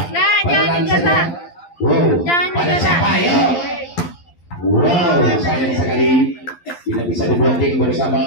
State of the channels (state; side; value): late; right; 12 ms